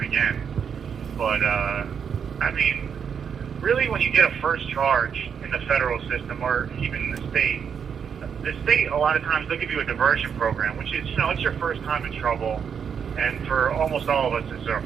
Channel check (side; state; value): left; quieter; 7.2 dB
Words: again. But, I mean, really, when you get a first charge in the federal system, or even in the state, a lot of times they'll give you a diversion program, which is, you know, it's your first time in trouble, and for almost all of us, it's our